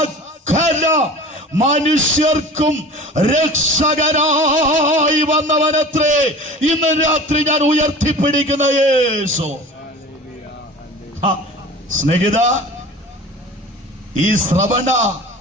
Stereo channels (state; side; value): normal; both; correlation 0.39